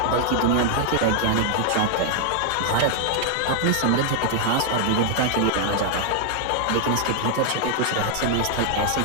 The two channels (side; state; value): both; different; correlation 0.00